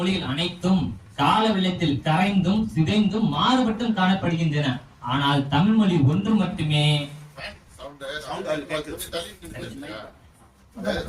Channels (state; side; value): identical; both; correlation 1.00